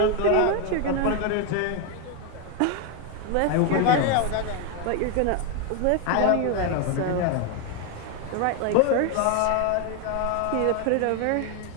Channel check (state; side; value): different; both; correlation 0.01